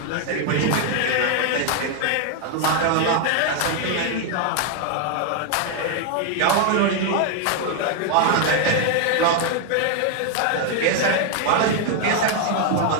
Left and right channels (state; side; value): different; both; correlation 0.00